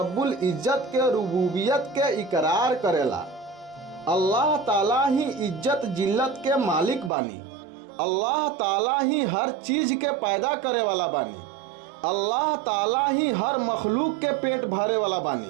इज्जत के रुबूबियत के इकरार करेला। अल्लाह ताला ही इज्जत जिल्लत के मालिक बानी। अल्लाह ताला ही हर चीज़ के पैदा करे वाला बानी। अल्लाह ताला ही हर मखलूक के पेट भरे वाला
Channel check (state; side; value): drops out; left; at 7.1 s